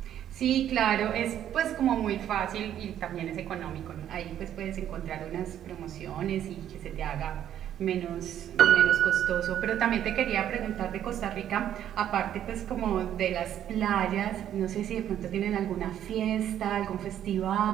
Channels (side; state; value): left; quieter; 10.7 dB